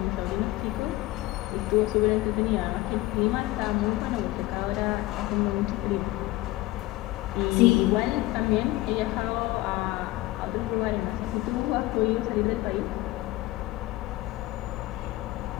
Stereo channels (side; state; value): right; quieter; 18.3 dB